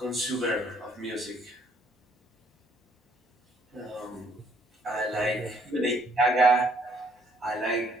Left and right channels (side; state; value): both; normal; correlation 0.66